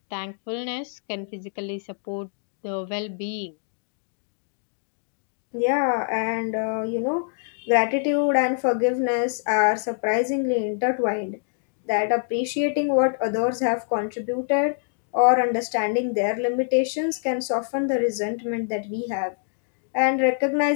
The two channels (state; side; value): silent; right; 62 dB below the other